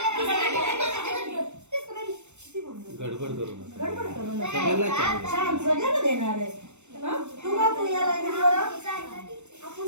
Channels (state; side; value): late; left; 0.83 ms